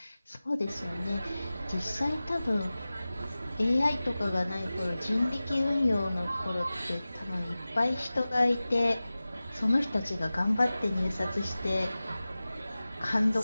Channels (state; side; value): inverted; both; correlation -0.97